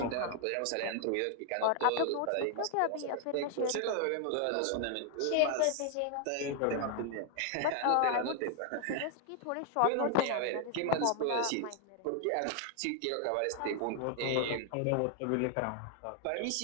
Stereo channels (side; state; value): both; different; correlation 0.00